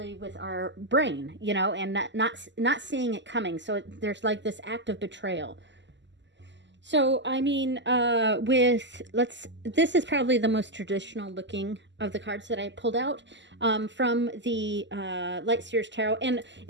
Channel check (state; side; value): late; left; 0.53 ms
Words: with our brain, and not seeing it coming. So there's like this act of betrayal. So, I mean, this is probably the most traditional looking of the cards that I pulled out from the Light Seers Tarot. And